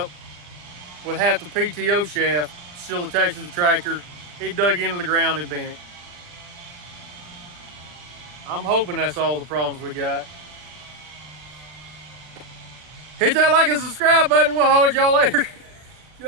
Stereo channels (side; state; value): left; late; 40 ms